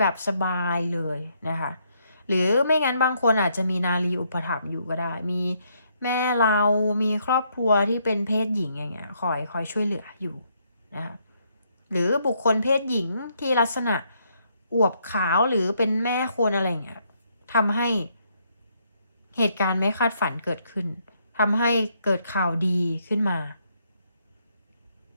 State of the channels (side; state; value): both; inverted; correlation -0.73